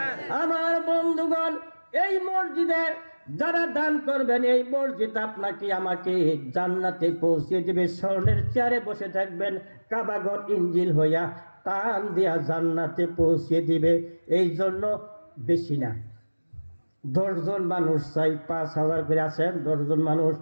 আমার বন্ধুগণ, এই মসজিদে যারা দান করবেন, এই মসজিদ আপনাকে আমাকে জান্নাতে পৌঁছে দেবে। স্বর্ণের চেয়ারে বসে থাকবেন, কাবাগর ইঞ্জিল হইয়া টান দিয়া জান্নাতে পৌঁছে দিবে। এই জন্য বেশি না, 10 জন মানুষ চাই, 5,000 করে আছেন, 10 জন মানুষ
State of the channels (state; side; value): inverted; both; correlation -1.00